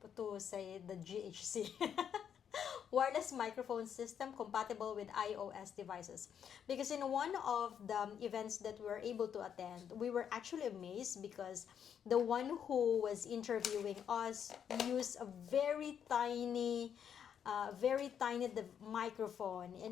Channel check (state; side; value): quieter; right; 8.3 dB